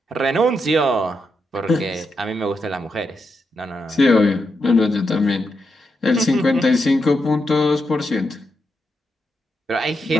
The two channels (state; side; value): normal; both; correlation 0.84